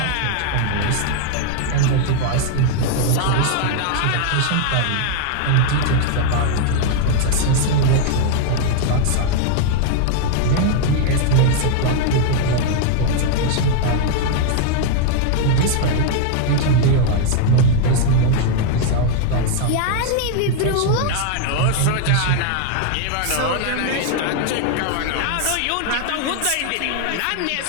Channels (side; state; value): both; different; correlation 0.00